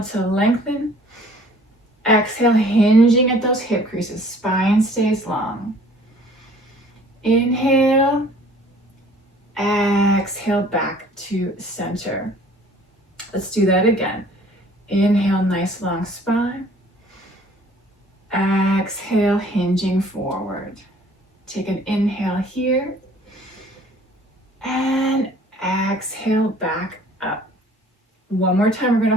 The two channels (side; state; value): both; normal; correlation 0.54